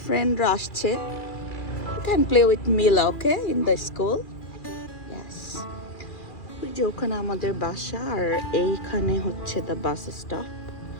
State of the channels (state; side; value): late; right; 2.4 ms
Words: ফ্রেন্ডরা আসছে। You can play with Mila, okay, in the school. Yes. ওই যে ওখানে আমাদের বাসা আর এইখানে হচ্ছে the bus stop.